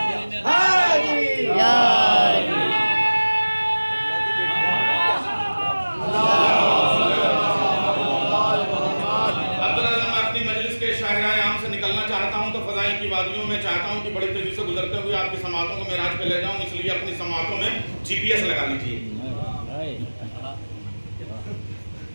मैं चाहता हूं कि बड़ी तेजी से गुजरते हुए आपकी समातों को मेराज पे ले जाऊं, इसलिए अपनी समातों में जीपीएस लगा लीजिए।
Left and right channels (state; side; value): inverted; both; correlation -1.00